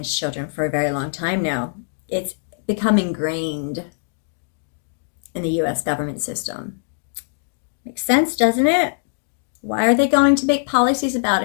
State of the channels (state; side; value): silent; right; digital silence